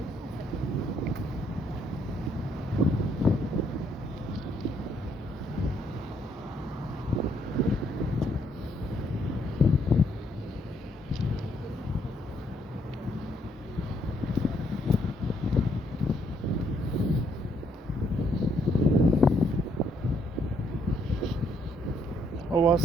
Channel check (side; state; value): both; normal; correlation 0.71